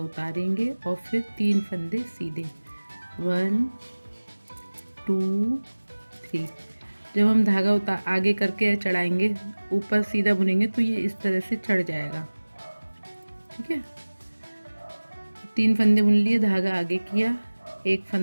उतारेंगे और फिर 3 फंदे सीधे। 1 2 3। जब हम धागा आगे करके चढ़ाएंगे, ऊपर सीधा बुनेंगे तो ये इस तरह से चढ़ जाएगा। ठीक है, 3 फंदे बुन लिए, धागा आगे किया, एक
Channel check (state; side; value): inverted; both; correlation -1.00